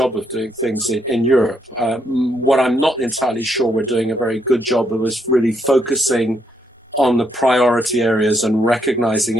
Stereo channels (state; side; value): normal; both; correlation 0.75